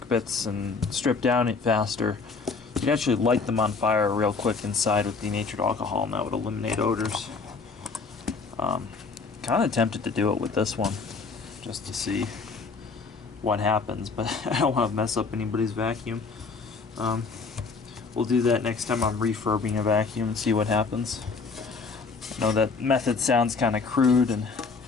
bits and stripped down it faster, You can actually light them on fire real quick inside with denatured alcohol, and that would eliminate odors. Kind of tempted to do it with this one, just to see what happens, but I don't want to mess up anybody's vacuum. We'll do that next time I'm refurbing a vacuum and see what happens. I know that method sounds kind of crude and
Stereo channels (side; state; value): right; quieter; 4.6 dB